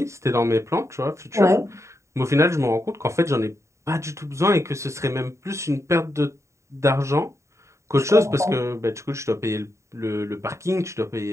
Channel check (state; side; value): late; left; 0.14 ms